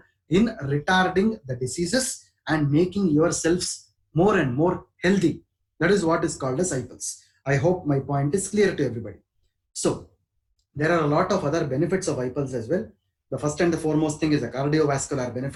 in retarding the diseases and making yourselves more and more healthy. That is what is called as iPulse. I hope my point is clear to everybody. So, there are a lot of other benefits of iPulse as well. The first and the foremost thing is a cardiovascular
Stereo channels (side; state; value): both; identical; correlation 1.00